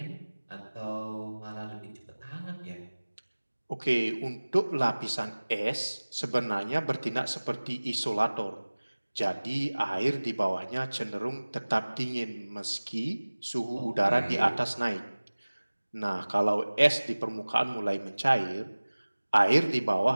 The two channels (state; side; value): inverted; both; correlation -1.00